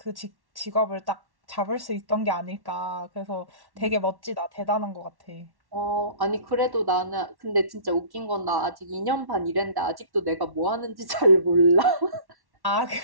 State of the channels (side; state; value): left; late; 1.1 ms